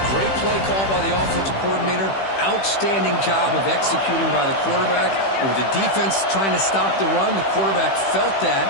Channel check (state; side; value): late; right; 15 ms